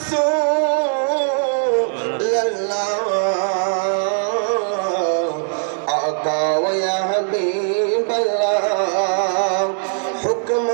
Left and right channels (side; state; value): left; silent; digital silence